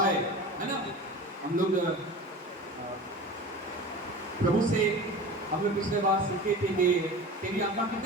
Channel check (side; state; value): both; normal; correlation 0.35